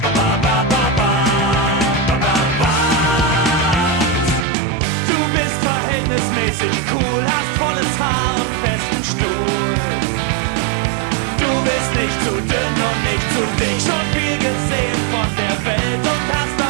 Verhältnismäßig cool, hast volles Haar und festen Stuhl. Du bist nicht zu dünn und nicht zu dick, schon viel gesehen von der Welt und hast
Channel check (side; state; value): left; drops out; at 4.5 s